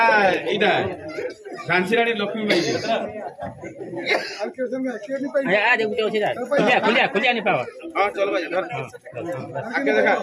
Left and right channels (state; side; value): identical; both; correlation 1.00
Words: इटा झांसीरानी लक्ष्मी बाई आ देखो तो सीधा खुलिया नहीं पावा हां चलो भाई घर आगे देखा